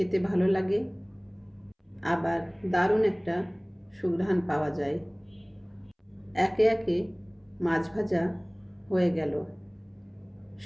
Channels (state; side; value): identical; both; correlation 1.00